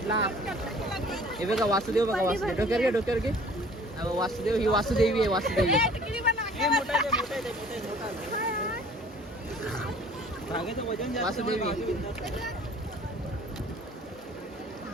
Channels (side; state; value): both; normal; correlation 0.51